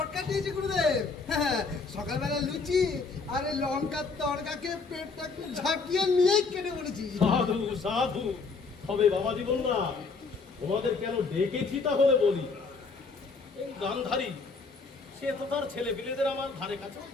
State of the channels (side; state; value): right; quieter; 4.4 dB